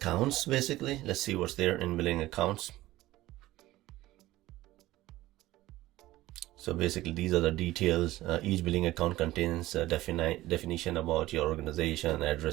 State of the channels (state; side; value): quieter; left; 16.7 dB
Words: basically. Let's see what's there in billing accounts. So basically, these are the details. Each billing account contains a definition about your organization,